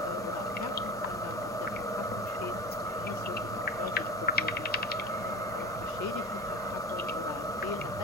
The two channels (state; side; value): normal; both; correlation 0.34